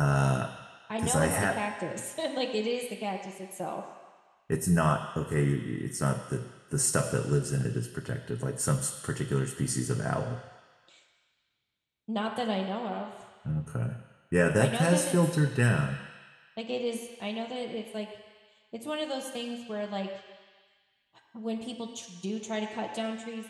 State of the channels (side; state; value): both; identical; correlation 1.00